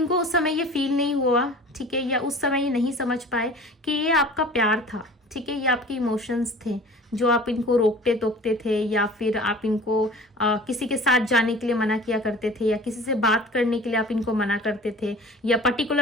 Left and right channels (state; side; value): normal; both; correlation 0.43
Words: उस समय ये फील नहीं हुआ, ठीक है, या उस समय ये नहीं समझ पाए कि ये आपका प्यार था, ठीक है, ये आपके इमोशंस थे जो आप इनको रोकते टोकते थे, या फिर आप इनको किसी के साथ जाने के लिए मना किया करते थे, या किसी से बात करने के लिए आप इनको मना करते थे, या